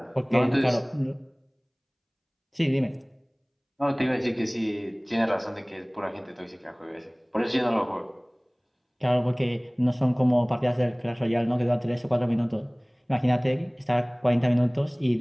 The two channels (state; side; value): identical; both; correlation 1.00